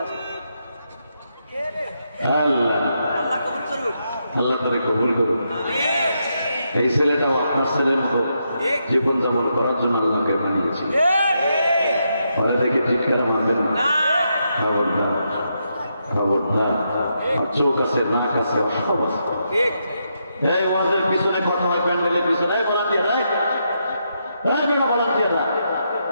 আছে আল্লাহ তারে কবুল করুন। এই ছেলেটাও আপনার ছেলের মতো জীবন যাপন করার জন্য আল্লাহকে বানিয়েছিল। ফলে থেকে চিৎকারা মানবেন না, খবরদার খবরদার। চোখ আছে, নাক আছে, সব আছে। এই ওয়াজের পিছনে কথা হয়, প্যান্ডেলের পিছনে ভলান্টিয়াররা, বেড়া ভলান্টিয়াররা,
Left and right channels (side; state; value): both; inverted; correlation -0.81